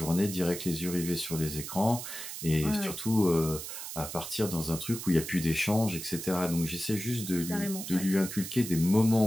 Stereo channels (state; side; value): noise; right; hiss, 8 dB below the sound